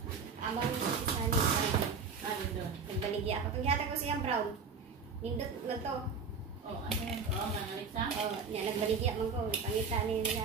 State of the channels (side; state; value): left; quieter; 5.3 dB